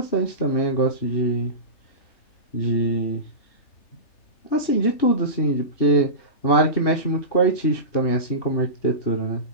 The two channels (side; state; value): right; late; 3.3 ms